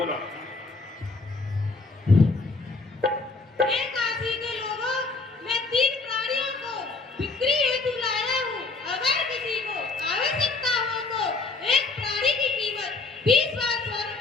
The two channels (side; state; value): right; quieter; 3.8 dB